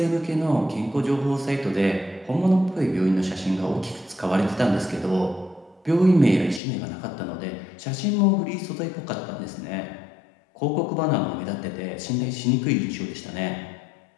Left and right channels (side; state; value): right; drops out; at 6.6 s